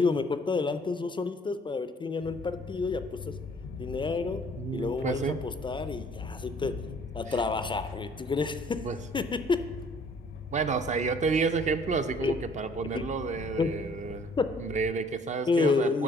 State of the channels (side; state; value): both; normal; correlation 0.57